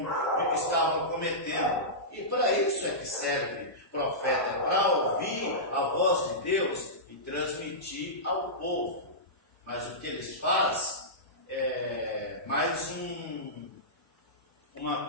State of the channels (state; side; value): normal; both; correlation -0.16